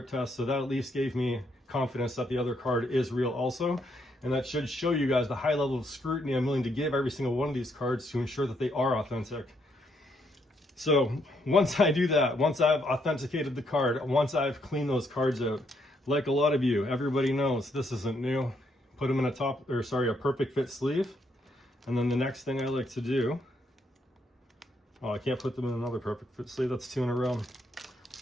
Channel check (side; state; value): both; normal; correlation 0.74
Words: test. So that at least gave me confidence that the other card is real also. And that should show you guys the high level of scrutiny I'm willing to give every single one of these cards to ensure that they are authentic. So once I do that, once I've authenticated the card, once I've cleaned those cards out, like a lot of you, everybody knows this isn't new. Put them in a perfect fit sleeve. And then the next thing I like to do, oh, I can't put them in another perfect fit sleeve, that's 2 in a row,